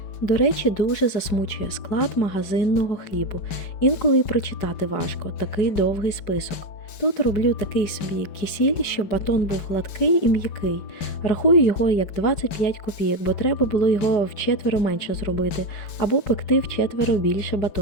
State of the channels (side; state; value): right; late; 5.2 ms